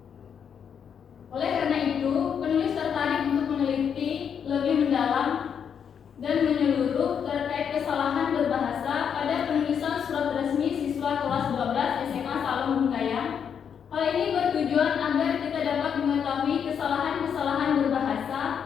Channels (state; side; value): quieter; right; 7.6 dB